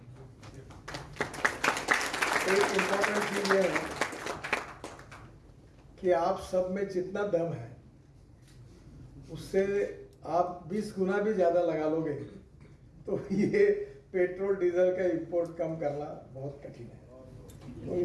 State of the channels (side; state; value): both; identical; correlation 1.00